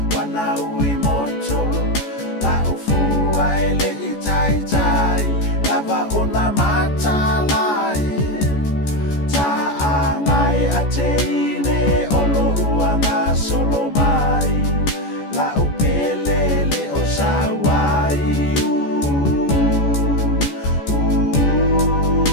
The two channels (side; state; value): right; late; 14 ms